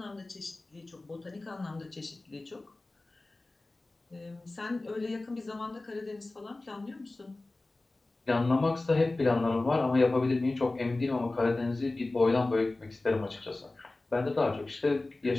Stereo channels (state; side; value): quieter; right; 3.0 dB